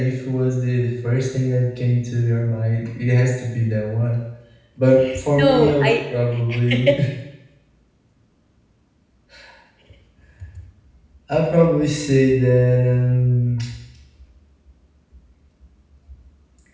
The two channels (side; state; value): both; identical; correlation 1.00